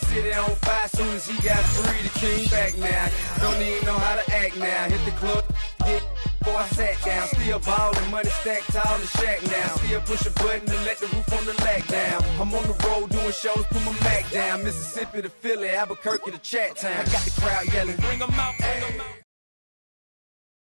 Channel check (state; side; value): inverted; both; correlation -1.00